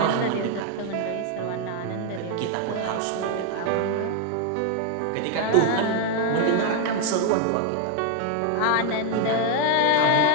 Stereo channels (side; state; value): both; different; correlation 0.01